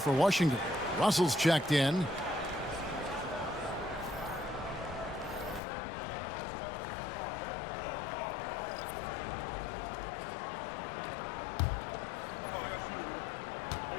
Washington. Russell's checked in.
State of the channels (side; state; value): right; drops out; at 5.6 s